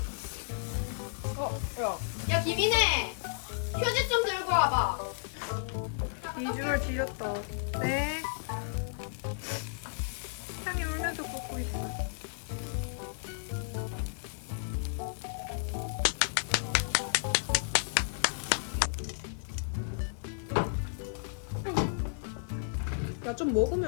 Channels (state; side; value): silent; right; digital silence